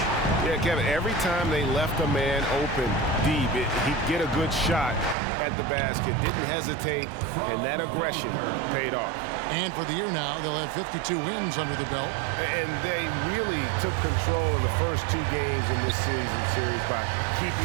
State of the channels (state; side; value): drops out; left; at 5.2 s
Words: Yeah, Kevin, every time they left a man open deep, he'd get a good shot at the basket. Didn't hesitate, and that aggression paid off. And for the year now, they'll have 52 wins under the belt. And they really took control of the first 2 games in this series by